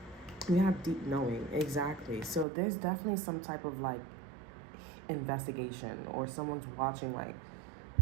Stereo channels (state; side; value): drops out; left; at 2.5 s